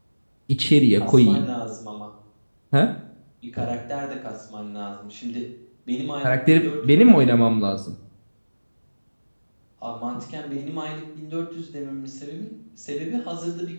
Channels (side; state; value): both; inverted; correlation -1.00